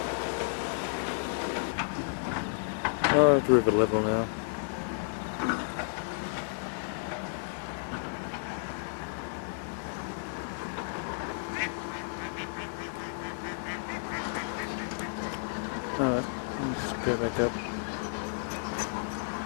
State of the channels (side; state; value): right; silent; digital silence